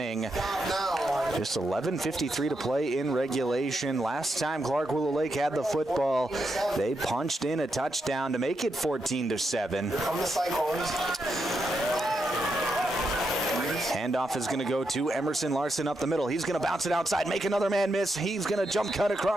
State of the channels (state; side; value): normal; both; correlation 0.83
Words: Just 11:53 to play in regulation. Last time Clark Willow Lake had the football, they punched in a touchdown to make it 14-7. Here come the Cyclones. Handoff is going to go to Emerson Larson up the middle. He's going to bounce it outside, make another man miss. He's going to jump cut